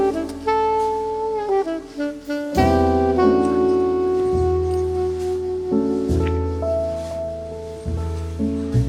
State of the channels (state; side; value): identical; both; correlation 1.00